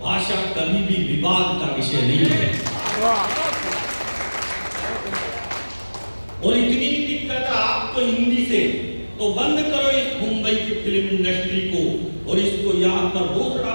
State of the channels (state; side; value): inverted; both; correlation -1.00